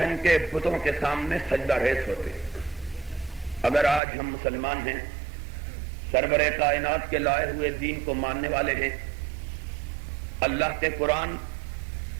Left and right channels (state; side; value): drops out; left; at 4.0 s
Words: کے بتوں کے سامنے سجدہ ریز ہوتے۔ اگر آج ہم مسلمان ہیں، سرور کائنات کے لائے ہوئے دین کو ماننے والے ہیں، اللہ کے قرآن